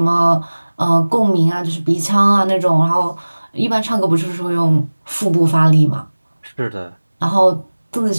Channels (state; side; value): inverted; both; correlation -1.00